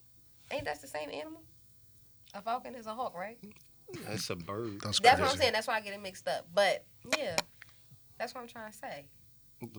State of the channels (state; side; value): identical; both; correlation 1.00